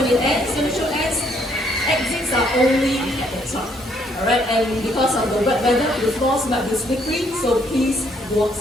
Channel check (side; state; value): both; normal; correlation 0.68